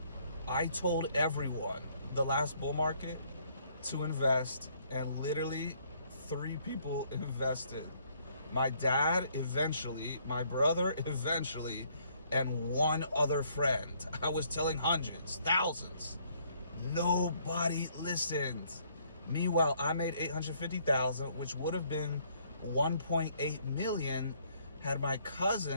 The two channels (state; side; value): inverted; both; correlation -0.66